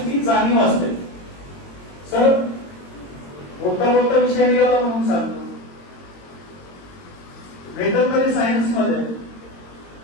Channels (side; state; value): right; late; 22 ms